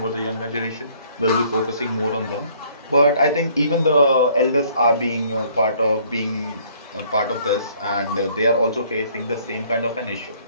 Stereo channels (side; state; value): both; inverted; correlation -0.61